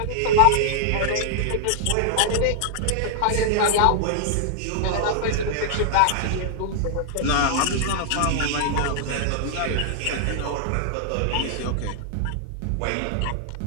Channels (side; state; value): both; different; correlation -0.01